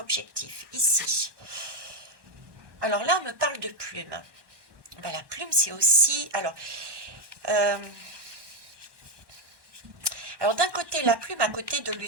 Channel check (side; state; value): left; late; 1.1 ms